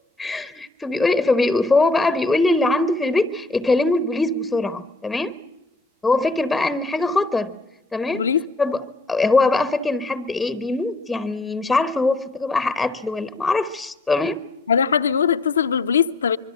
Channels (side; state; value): right; quieter; 3.1 dB